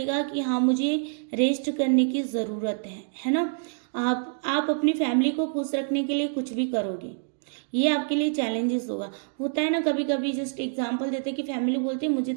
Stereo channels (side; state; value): left; silent; digital silence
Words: कि हाँ मुझे रेस्ट करने की ज़रूरत है ना। आप अपनी फैमिली को खुश रखने के लिए कुछ भी करोगे, ये आपके लिए चैलेंजेस होगा। होता है ना कभी कभी, जस्ट एग्जांपल देते हैं कि फैमिली बोलती है मुझे